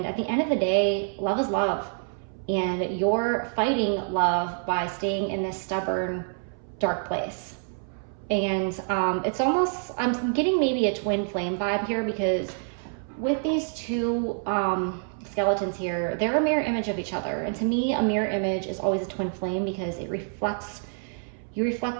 at the end of the day, love is love. And you're fighting love by staying in this stubborn, dark place. And it's almost, I'm getting maybe a twin flame vibe here, because with these 2 skeletons here, they're a mirror image of each other. And to me, a mirror image is always a twin flame, because it reflects, you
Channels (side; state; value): left; silent; 60 dB below the other